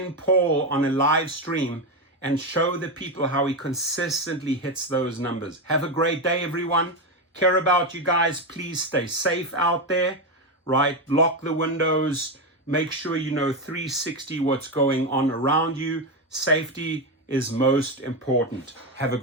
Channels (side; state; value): both; normal; correlation 0.11